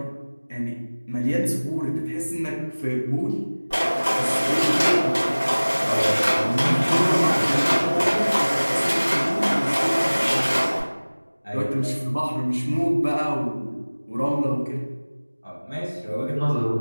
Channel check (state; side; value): inverted; both; correlation -1.00